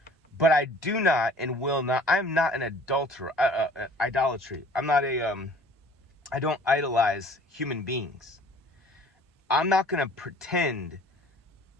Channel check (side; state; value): both; normal; correlation 0.51